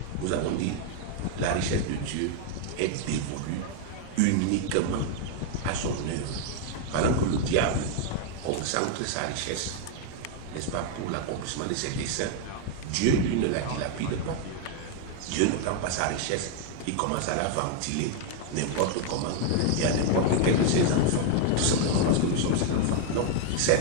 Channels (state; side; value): different; both; correlation 0.00